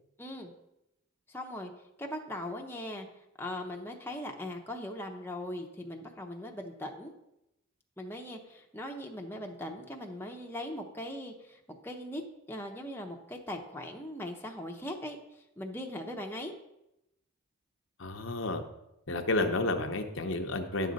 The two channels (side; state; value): both; normal; correlation 0.20